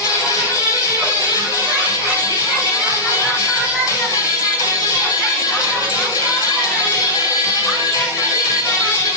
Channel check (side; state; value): both; normal; correlation -0.12